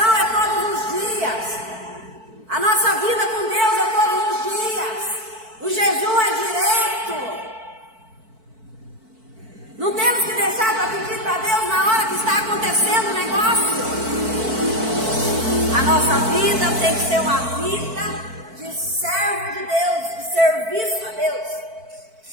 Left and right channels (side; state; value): left; late; 4.5 ms